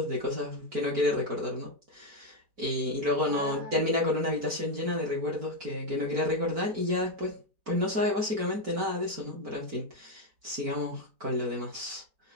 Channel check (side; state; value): left; late; 4.5 ms